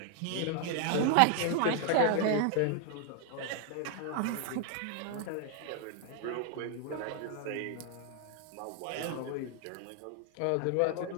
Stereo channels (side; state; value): both; different; correlation 0.00